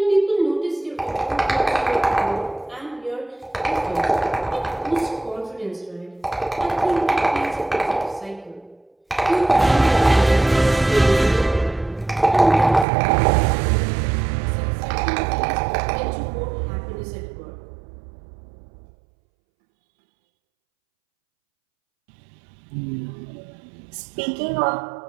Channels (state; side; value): drops out; left; at 12.9 s